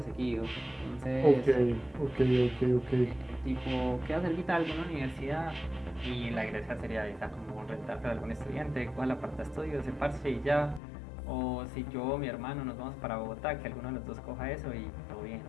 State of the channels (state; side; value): drops out; right; at 10.8 s